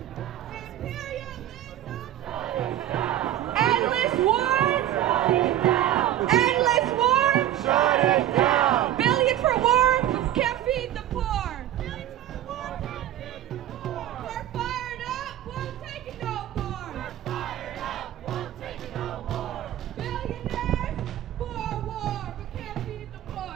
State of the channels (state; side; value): quieter; left; 12.3 dB